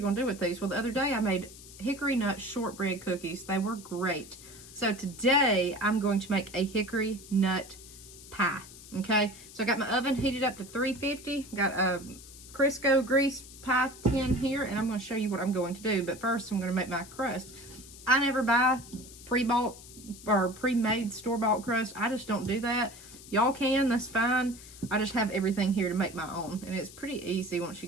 going to do with these? Well, the other day I made hickory nut shortbread cookies. They were great. So today I'm going to make a hickory nut pie. Okay, so I got my oven heated up to 350. Got a Crisco grease pie tin here, and I'm going to show you what I'm going to do. But first, I'm going to make my crust. I never buy pre-bought or pre-made store-bought crust. I just don't do that. Y'all can, that's fine. I just have everything here to make my own, and it's pretty easy once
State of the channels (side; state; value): left; noise; hiss, 17 dB below the sound